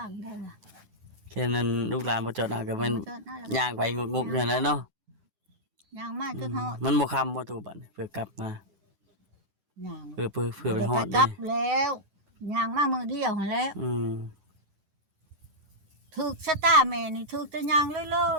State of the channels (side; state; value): left; late; 10 ms